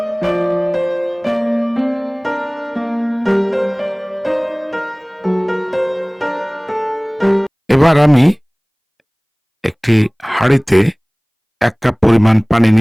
এবার আমি একটি হাঁড়িতে 1 কাপ পরিমাণ পানি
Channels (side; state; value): both; identical; correlation 1.00